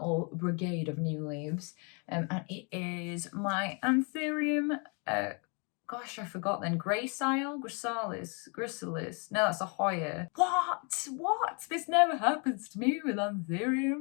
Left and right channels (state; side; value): quieter; right; 35.4 dB